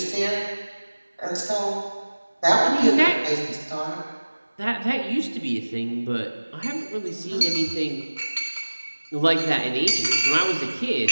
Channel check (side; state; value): both; inverted; correlation -1.00